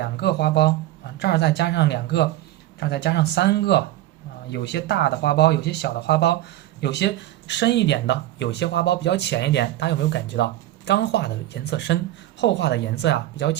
个花苞啊，这儿再加上2个，这儿再加上3个啊，有些大的花苞，有些小的花苞，有些深一点的，有些花苞比较浅一点，大家有没有感觉到？刚画的颜色深，后画的颜色比较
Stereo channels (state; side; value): quieter; left; 14.5 dB